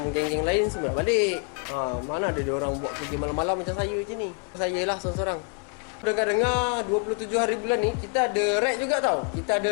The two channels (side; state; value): right; quieter; 35.0 dB